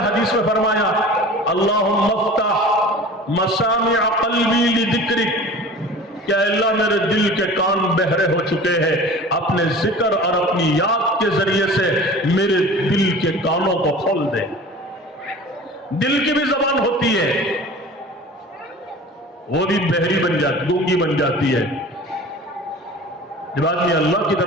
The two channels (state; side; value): normal; both; correlation 0.40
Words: میں فرمایا، اللہم افتح مسامع قلبی لذکرک، کہ اللہ میرے دل کے کان بہرے ہو چکے ہیں، اپنے ذکر اور اپنی یاد کے ذریعے سے میرے دل کے کانوں کو کھول دے. دل کی بھی زبان ہوتی ہے، وہ بھی بہری بن جاتی، گونگی بن جاتی ہے. جب آدمی اللہ کی